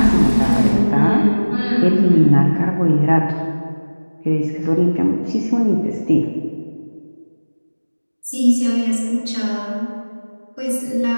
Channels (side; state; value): both; inverted; correlation -1.00